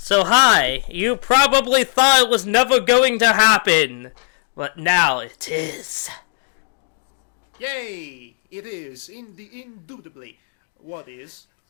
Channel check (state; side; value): silent; right; 61 dB below the other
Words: hi, you probably thought it was never going to happen, but now it is. Yay! It is, indubitably. What is?